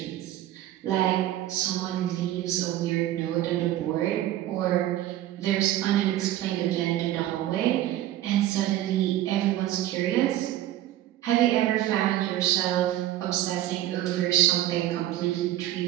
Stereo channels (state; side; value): quieter; left; 13.5 dB